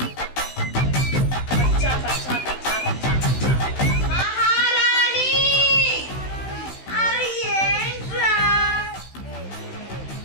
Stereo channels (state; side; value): late; right; 16 ms